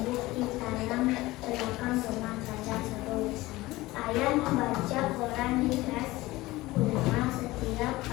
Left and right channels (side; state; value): right; quieter; 19.1 dB